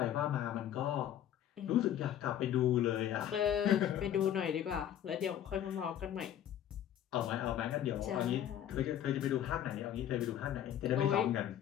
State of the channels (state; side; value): quieter; right; 10.8 dB